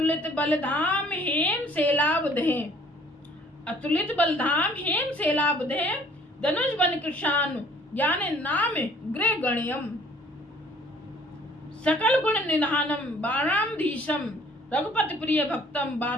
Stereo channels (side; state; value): both; normal; correlation 0.57